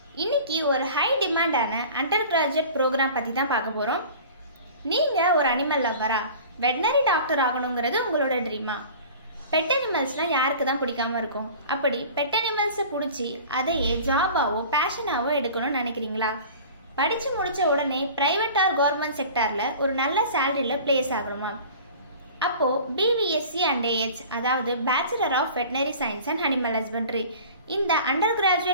இன்னைக்கு ஒரு high டிமாண்டான under graduate program பத்தி தான் பார்க்க போறோம். நீங்க ஒரு அனிமல் லவ்வரா? வெட்டனரி டாக்டர் ஆகணும்ங்கிறது உங்களோட ட்ரீமா? பெட் அனிமல்ஸ்லாம் யாருக்கு தான் பிடிக்காம இருக்கும்? அப்படி பெட் அனிமல்ஸை பிடிச்சி அதையே ஜாபாவோ பேஷனாவோ எடுக்கணும்னு நினைக்கிறீங்களா? படிச்சு முடிச்ச உடனே பிரைவேட் ஆர் கவர்மெண்ட் செக்டார்ல ஒரு நல்ல சேலரியில பிளேஸ் ஆகணுமா? அப்போ BVSc and AH அதாவது bachelor of veterinary science and animal husbandry இந்த அண்டர்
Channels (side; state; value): both; inverted; correlation -0.42